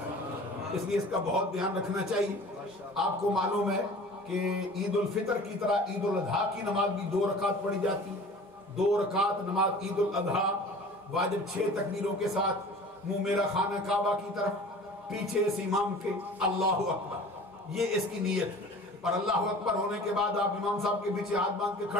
اس لیے اس کا بہت دھیان رکھنا چاہیے۔ آپ کو معلوم ہے کہ عید الفطر کی طرح عید الاضحیٰ کی نماز بھی 2 رکعت پڑھی جاتی ہے۔ 2 رکعت نماز عید الاضحیٰ واجب 6 تکبیروں کے ساتھ، منہ میرا خانہ کعبہ کی طرف، پیچھے اس امام کے اللہ اکبر، یہ اس کی نیت ہے۔ اور اللہ اکبر ہونے کے بعد آپ امام صاحب کے پیچھے ہاتھ باندھ کے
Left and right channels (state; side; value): normal; both; correlation 0.43